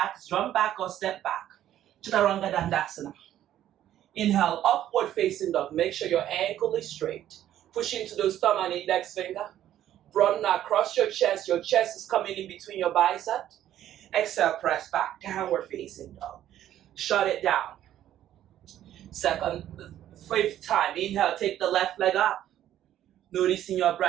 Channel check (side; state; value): left; quieter; 11.9 dB